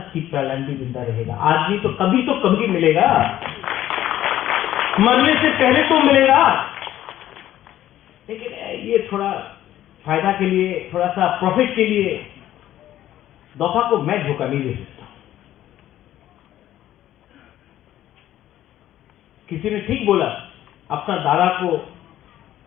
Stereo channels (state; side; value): quieter; right; 12.8 dB